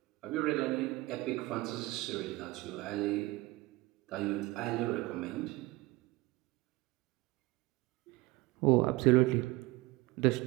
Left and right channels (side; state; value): left; quieter; 20.6 dB